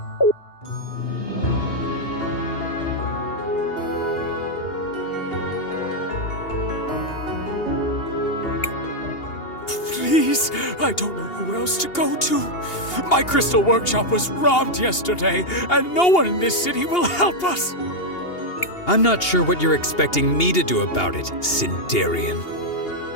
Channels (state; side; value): late; right; 2.8 ms